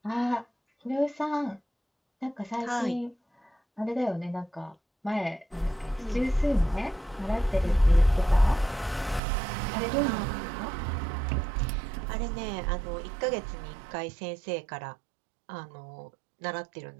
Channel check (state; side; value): drops out; left; at 9.2 s